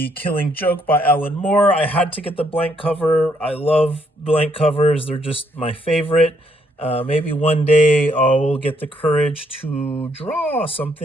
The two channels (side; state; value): both; normal; correlation 0.72